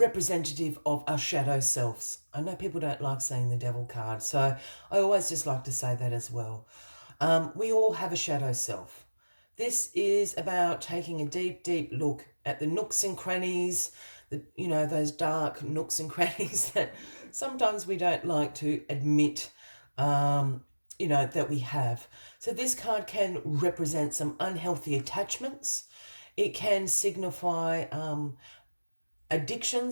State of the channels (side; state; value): both; inverted; correlation -1.00